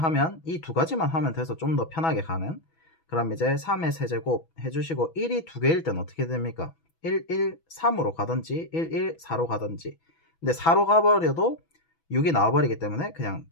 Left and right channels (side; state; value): right; late; 6.1 ms